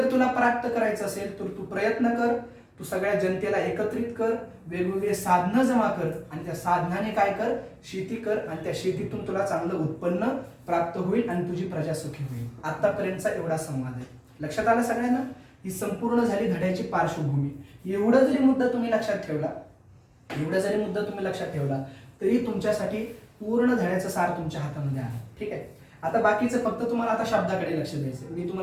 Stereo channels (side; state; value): both; identical; correlation 1.00